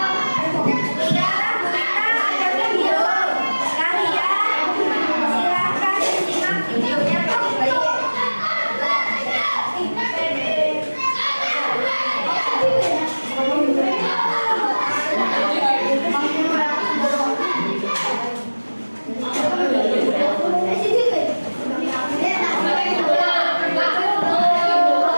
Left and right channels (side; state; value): both; inverted; correlation -1.00